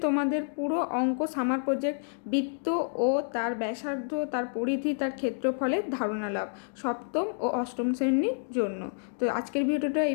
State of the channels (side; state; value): right; silent; digital silence